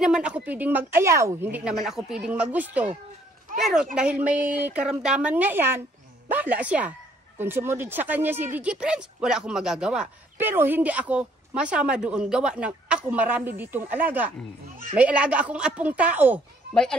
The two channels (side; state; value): both; normal; correlation 0.64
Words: ako pwedeng mag-ayaw, hindi naman ako pwedeng magusto. Pero dahil may karamdaman nga yan, bahala siya. Kung sumunod sa kanya si DJ Franz, wala akong magagawa. Pero hindi ako masama doon, gawa ng ako marami ditong alaga. May alaga akong apong tao, may